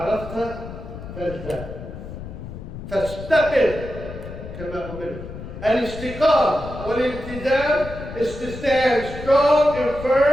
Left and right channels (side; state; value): left; noise; rumble, 11 dB below the sound